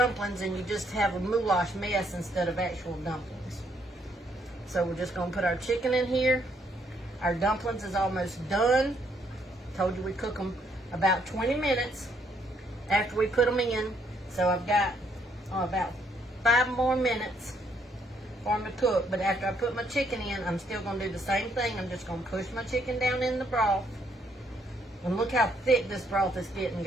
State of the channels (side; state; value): both; normal; correlation 0.71